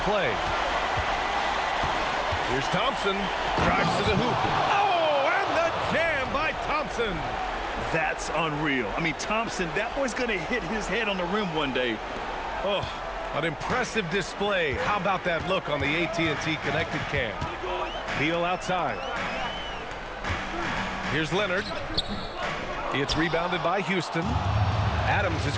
Here's Thompson. Drives to the hoop. Oh, and the jam by Thompson. That's unreal. I mean, Thompson, that boy's going to hit his head on the rim one day. Oh, an impressive display. How about that look on the AT&T connected cam? Beal outside. Here's Leonard. It's rebounded by Houston. Adams has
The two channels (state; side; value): identical; both; correlation 1.00